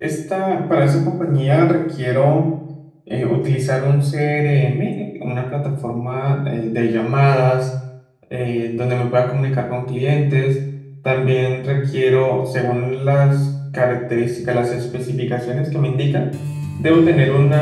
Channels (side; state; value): both; identical; correlation 1.00